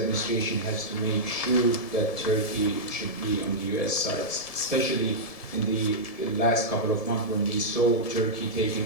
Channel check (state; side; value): late; right; 1.7 ms